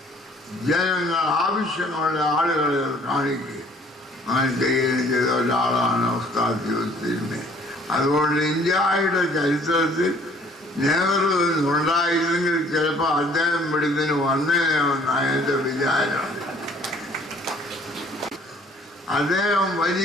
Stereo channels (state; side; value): normal; both; correlation 0.57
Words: ജനങ്ങൾ ആവശ്യമുള്ള ആളുകളെ കാണിക്കുക അങ്ങനെ ചെയ്യുകയും ചെയ്ത ഒരാളാണ് ഉസ്താദ് യൂസുഫ്. അതുകൊണ്ട് ഇന്ത്യയുടെ ചരിത്രത്തിൽ നെഹ്റു ഉണ്ടായിരുന്നെങ്കിൽ ചിലപ്പോൾ അദ്ദേഹം ഇവിടുന്ന് വന്നേനെന്നാണ് എൻ്റെ വിചാരം. അദ്ദേഹം